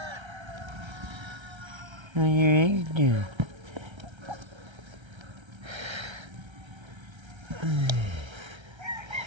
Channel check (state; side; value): late; left; 1.3 ms